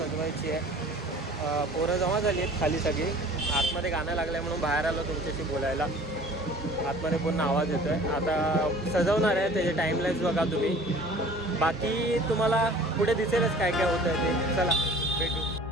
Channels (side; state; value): both; normal; correlation 0.47